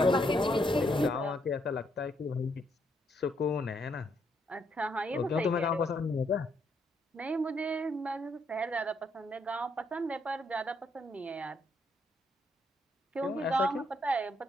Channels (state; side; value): normal; both; correlation 0.74